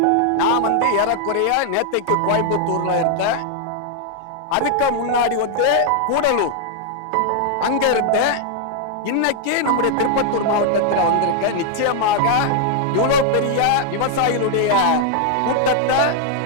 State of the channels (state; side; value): different; both; correlation 0.00